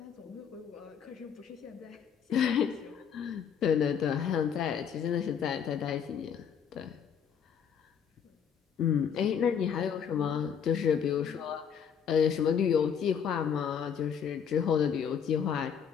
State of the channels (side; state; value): right; quieter; 7.6 dB